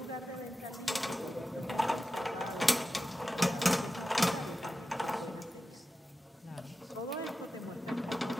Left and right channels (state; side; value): normal; both; correlation 0.93